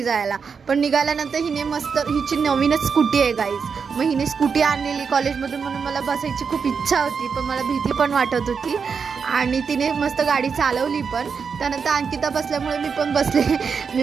जायला. पण निघाल्यानंतर हिने मस्त, हिची नवीनच स्कूटी आहे गाईज. मग हिने स्कूटी आणलेली कॉलेजमधून म्हणून मला बसायची खूप इच्छा होती, पण मला भीती पण वाटत होती. आणि तिने मस्त गाडी चालवली पण. त्यानंतर अंकिता बसल्यामुळे मी पण बसले.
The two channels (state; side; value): quieter; left; 5.9 dB